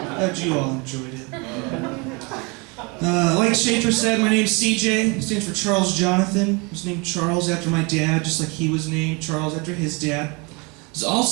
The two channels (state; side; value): quieter; left; 29.5 dB